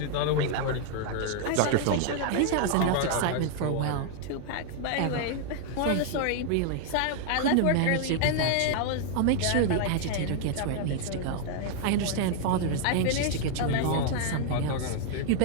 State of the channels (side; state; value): both; different; correlation 0.00